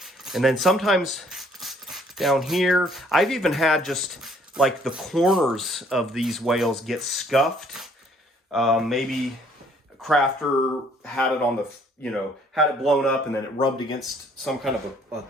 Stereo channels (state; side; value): normal; both; correlation 0.62